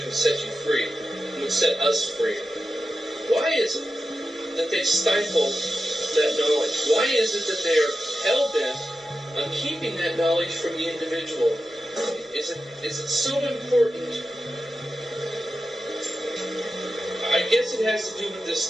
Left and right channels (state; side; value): normal; both; correlation 0.91